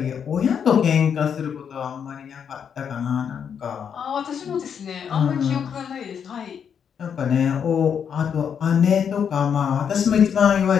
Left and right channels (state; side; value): quieter; right; 7.6 dB